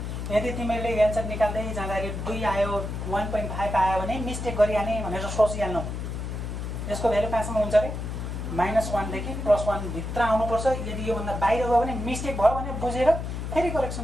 यदि तिमीहरूले एन्सर निकाल्दै जाँदाखेरि 2 आयो, 1.5 आयो भने मिस्टेक गरिहाल्ने भनेर सोचिहाल्नु। यसको भ्यालु कहाँसम्म हुन्छ अरे? -1 देखि +1 भित्र आउनुपर्छ। यदि योभन्दा बाहिर गयो भने मिस्टेक भयो भने बुझेर फेरि करेक्सन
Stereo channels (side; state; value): left; noise; hum, 5 dB below the sound